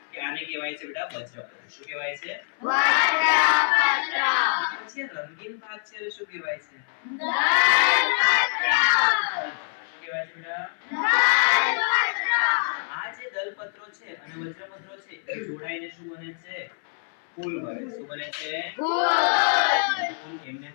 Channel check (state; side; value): silent; right; 62 dB below the other